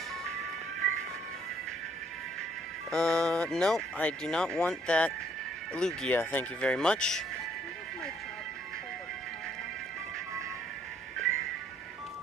No, I do not want that Lugia. Thank you very much.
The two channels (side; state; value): both; normal; correlation 0.65